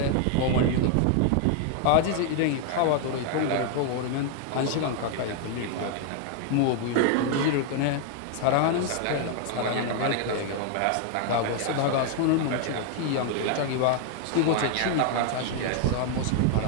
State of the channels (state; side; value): different; both; correlation 0.00